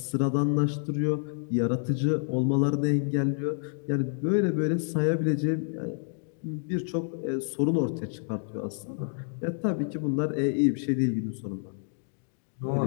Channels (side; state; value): right; silent; digital silence